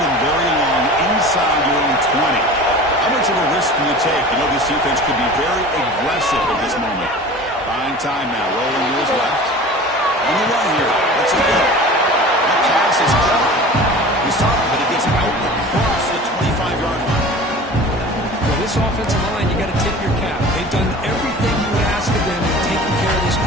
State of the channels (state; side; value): normal; both; correlation 0.39